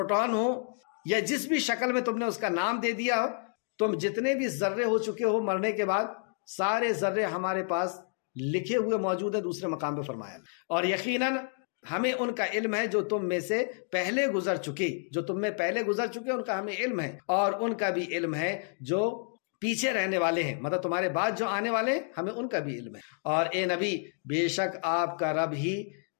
ہو، یا جس بھی شکل میں تم نے اس کا نام دے دیا ہو، تم جتنے بھی ذرے ہو چکے ہو مرنے کے بعد، سارے ذرے ہمارے پاس لکھے ہوئے موجود ہیں دوسرے مقام پہ فرمایا۔ اور یقیناً ہمیں ان کا علم ہے جو تم میں سے پہلے گزر چکے، جو تم میں پہلے گزر چکے ان کا ہمیں علم ہے، اور ان کا بھی علم ہے جو پیچھے رہنے والے ہیں، مطلب تمہارے بعد جو آنے والے ہیں، ہمیں ان کا بھی علم ہے۔ اور اے نبی، بے شک آپ کا رب ہی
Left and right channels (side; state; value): right; silent; 58 dB below the other